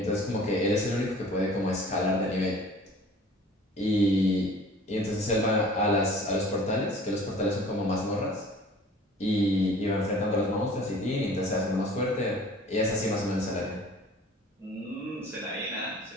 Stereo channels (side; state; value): both; normal; correlation 0.47